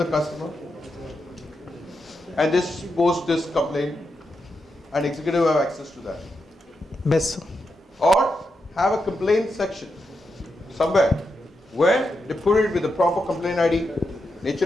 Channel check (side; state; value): both; normal; correlation 0.86